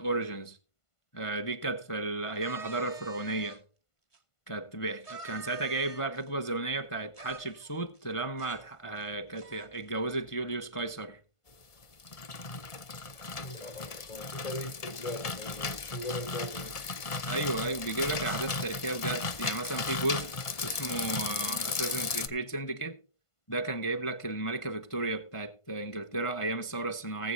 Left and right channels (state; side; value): late; right; 1.5 ms